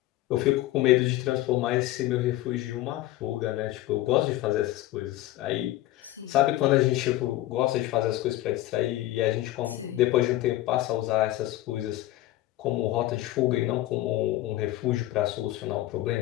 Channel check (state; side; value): quieter; right; 15.9 dB